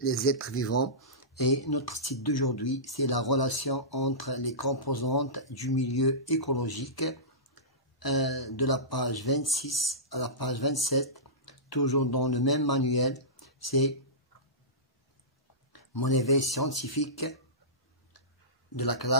êtres vivants et notre titre d'aujourd'hui c'est la relation entre les composantes du milieu écologique de la page 26 à la page 27, toujours dans le même manuel. C'est mon éveil scientifique de la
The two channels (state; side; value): normal; both; correlation -0.19